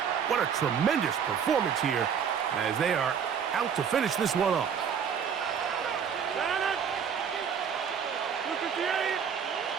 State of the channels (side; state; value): left; quieter; 7.4 dB